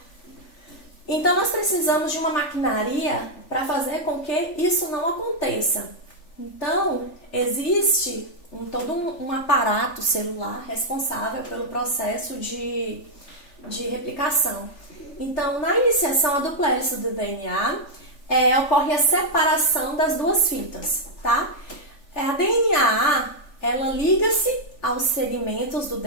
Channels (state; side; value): late; right; 3.4 ms